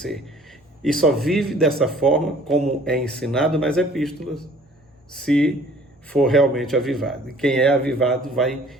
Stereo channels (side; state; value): both; normal; correlation 0.53